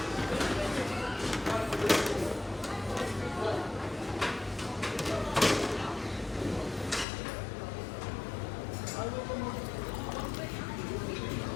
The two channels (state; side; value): drops out; right; at 7.1 s